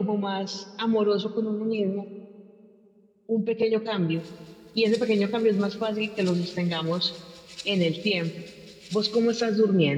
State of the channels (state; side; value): identical; both; correlation 1.00